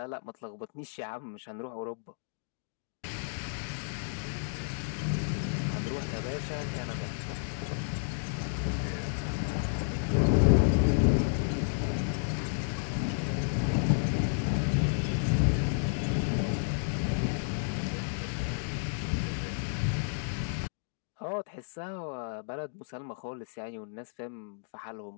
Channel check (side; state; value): right; silent; digital silence